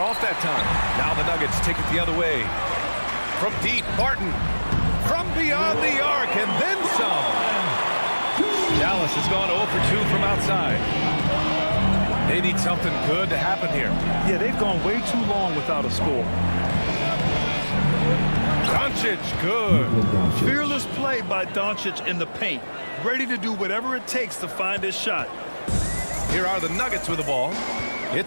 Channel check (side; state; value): both; inverted; correlation -1.00